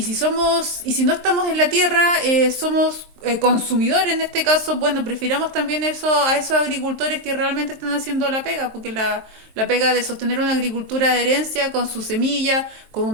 no estamos en la tierra, somos consumidores en este caso. Bueno, prefiramos también eso a esos agricultores que realmente están haciendo la pega, porque la pega de sostener una agricultura de herencia con su semilla, con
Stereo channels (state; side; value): late; left; 23 ms